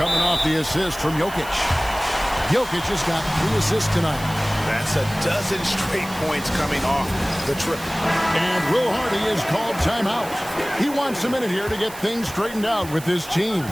off the assist from Jokic. Jokic has got 3 assists tonight. That's a dozen straight points coming off the triple. And Will Hardy is called timeout. He wants a minute here to get things straightened out with his team.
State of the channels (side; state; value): right; noise; hiss, 15 dB below the sound